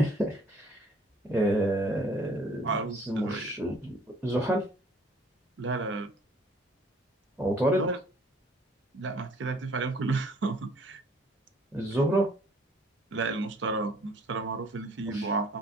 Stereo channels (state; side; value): normal; both; correlation 0.57